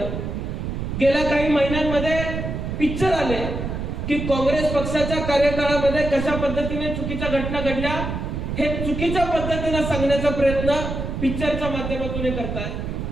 गेल्या काही महिन्यांमध्ये पिक्चर आले की काँग्रेस पक्षाच्या कार्यकाळामध्ये कशा पद्धतीने चुकीच्या घटना घडल्या हे चुकीच्या पद्धतीने सांगण्याचा प्रयत्न पिक्चरच्या माध्यमातून करतायत.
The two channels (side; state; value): right; noise; rumble, 4 dB below the sound